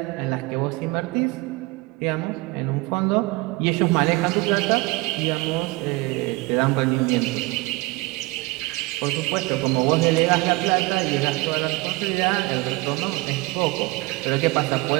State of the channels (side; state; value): left; quieter; 22.7 dB